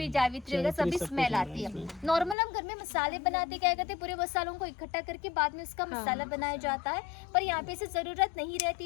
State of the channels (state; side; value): drops out; right; at 2.4 s